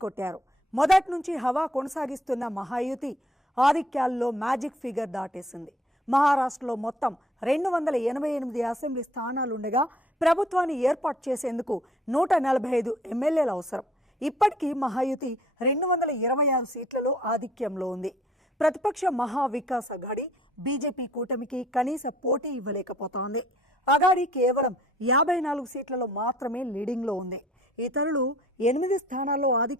కొట్టారు. మొదటి నుంచి హవా కొనసాగిస్తున్న మహాయుతి ఆధిక్యాల్లో మ్యాజిక్ ఫిగర్ దాటేసింది. మహారాష్ట్రలో మొత్తం 288 అసెంబ్లీ స్థానాలుండగా ప్రభుత్వాన్ని ఏర్పాటు చేసేందుకు 145 ఎమ్మెల్యేలు అవసరం. ఇప్పటికీ మహాయుతి 226 సీట్లలో ఆధిక్యంలో ఉంది. ప్రతిపక్ష మహావికాస్ అఘాడీ బీజేపీ కూటమికి కనీస పోటీ ఇవ్వలేకపోతోంది. అఘాడీ కేవలం 54 సీట్లలో మాత్రమే లీడింగ్లో ఉంది. ఇతరులు 8 స్థానాల్లో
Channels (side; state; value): both; normal; correlation 0.57